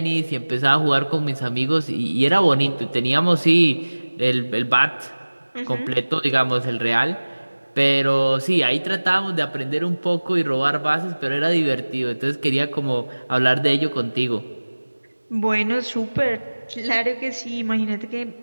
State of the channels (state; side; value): inverted; both; correlation -1.00